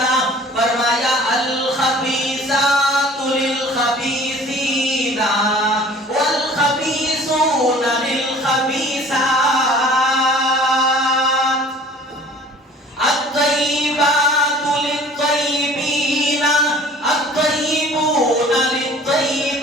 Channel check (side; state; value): both; normal; correlation 0.48